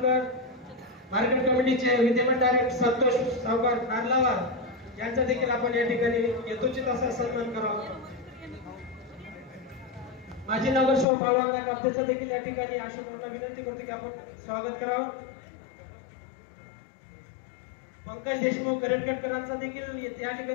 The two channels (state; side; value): drops out; right; at 11.1 s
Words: मार्केट कमिटीचे विद्यमान डायरेक्टर संतोष सावकार नारलावार यांचा देखील आपण या ठिकाणी यथोचित असा सन्मान करावा। माजी नगरसेवक बाळवांना कापतेचा देखील या ठिकाणी अशोकांना विनंती करतो की आपण स्वागत करावं। पंकज देशमुख करटकरांचा देखील या